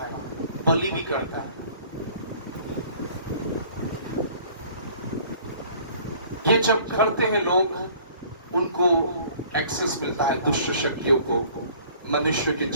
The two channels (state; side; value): inverted; both; correlation -0.53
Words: बलि भी करता है। ये जब करते हैं लोग, उनको एक्सेस मिलता है दुष्ट शक्तियों को मनुष्य के